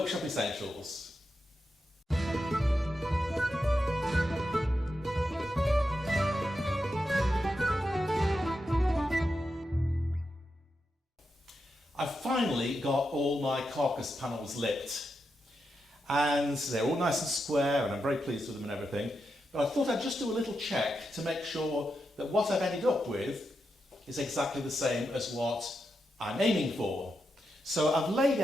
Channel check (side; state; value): both; normal; correlation 0.86